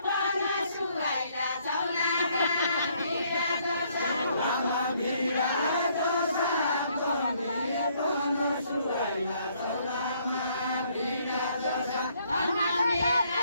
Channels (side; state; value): both; inverted; correlation -0.67